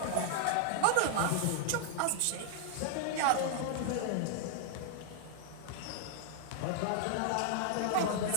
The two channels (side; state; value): both; different; correlation -0.01